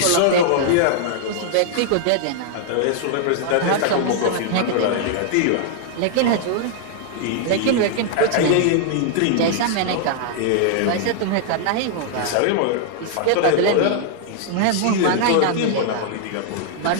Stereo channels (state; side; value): different; both; correlation -0.01